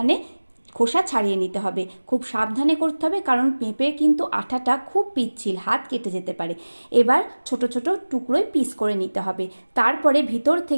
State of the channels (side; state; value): both; inverted; correlation -1.00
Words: খোসা ছাড়িয়ে নিতে হবে। খুব সাবধানে করতে হবে, কারণ পেঁপে কিন্তু আঠাটা খুব পিচ্ছিল, হাত কেটে যেতে পারে। এবার ছোট ছোট টুকরোয় পিস করে নিতে হবে। তারপরে ভিতর